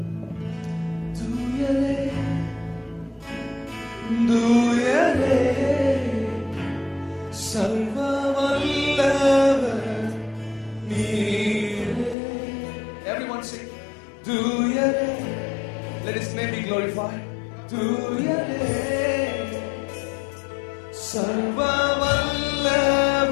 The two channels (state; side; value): drops out; right; at 12.2 s